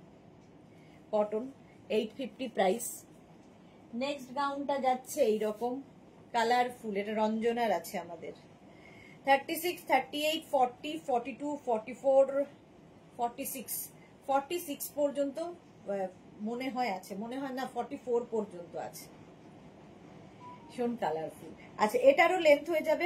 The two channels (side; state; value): both; identical; correlation 1.00